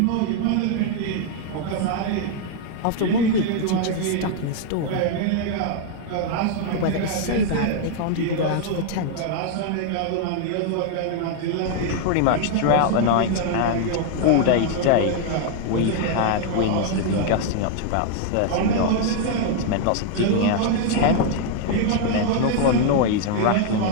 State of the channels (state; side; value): different; both; correlation 0.00